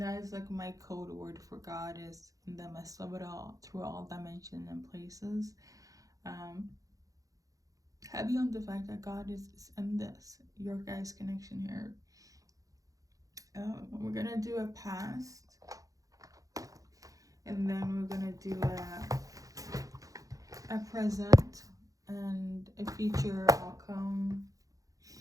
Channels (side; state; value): left; late; 0.17 ms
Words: is like my code word for God is in the midst of it all, through all dimensions and places. Heavy on the fact that God is in this, your guys' connection here. We're gonna do a past, and then we're gonna do a present and a future outcome.